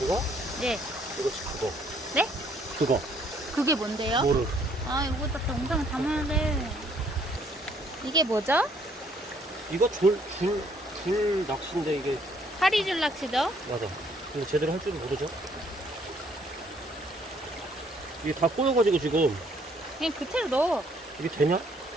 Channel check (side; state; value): both; normal; correlation 0.65